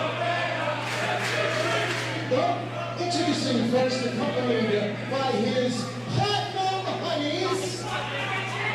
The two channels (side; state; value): both; identical; correlation 1.00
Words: Introducing first, accompanied by his platinum honeys